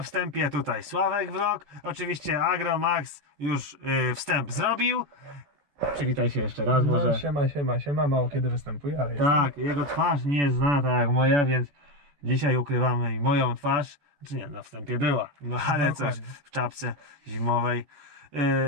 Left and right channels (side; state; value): left; late; 14 ms